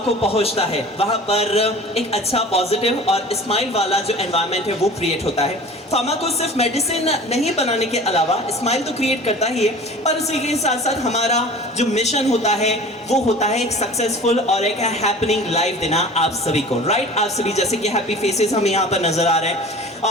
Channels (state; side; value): normal; both; correlation 0.41